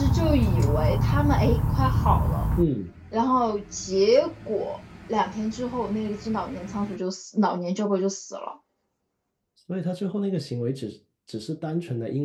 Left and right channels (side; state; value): both; identical; correlation 1.00